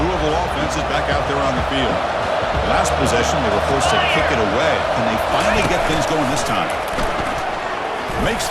offense is back out there on the field. Last possession, they were forced to kick it away. Can they finally get things going this time? Makes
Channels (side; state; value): both; identical; correlation 1.00